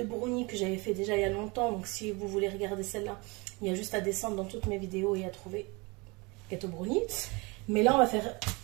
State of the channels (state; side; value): quieter; left; 27.4 dB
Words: brownies que j'avais fait déjà il y a longtemps. Donc si vous voulez regarder celle-là, il y a juste à descendre dans toutes mes vidéos et à trouver gâteau brownie. Mais là on va faire